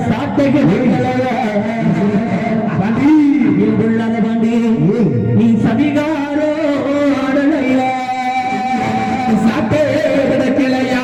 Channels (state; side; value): identical; both; correlation 1.00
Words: சாட்டை கிடைக்கலையா பாண்டி நீ சதிகாரோ ஆடலையா சாட்டே கிடைக்கலையா